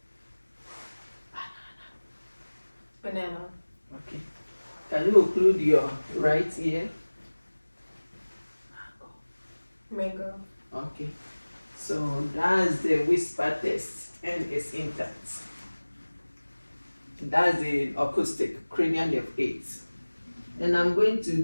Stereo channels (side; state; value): both; inverted; correlation -1.00